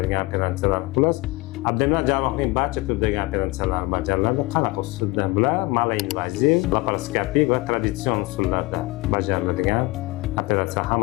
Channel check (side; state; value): right; quieter; 22.1 dB